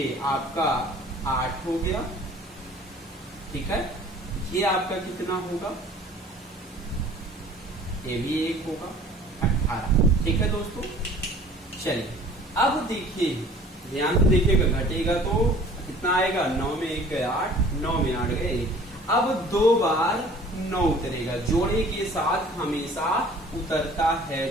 आपका 8 हो गया। ठीक है, ये आपका कितना होगा, ये भी 1 होगा, 18। ठीक है दोस्तों, चलिए अब देखिए, ध्यान से देखिएगा, घटेगा तो कितना आएगा, 9 में 1 गए 8, 9 में 8 गए। अब 2 बार 9 उतरेगा, जोड़े के साथ हमेशा उतरता है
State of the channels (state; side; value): normal; both; correlation 0.49